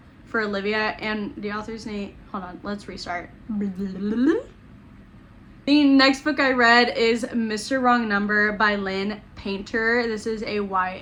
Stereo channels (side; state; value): both; identical; correlation 1.00